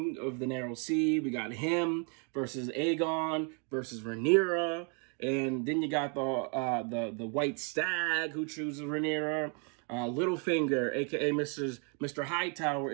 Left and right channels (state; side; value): quieter; left; 37.5 dB